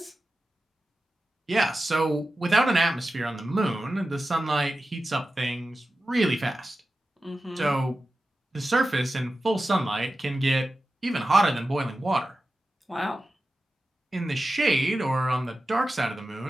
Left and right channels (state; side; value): normal; both; correlation 0.93